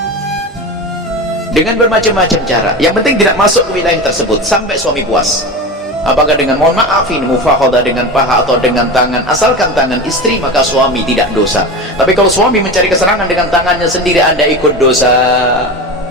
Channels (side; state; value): both; normal; correlation 0.26